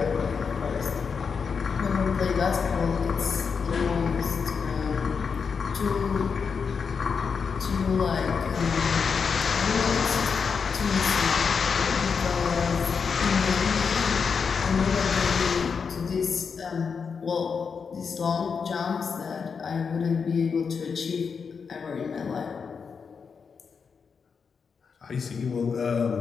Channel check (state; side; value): quieter; right; 5.8 dB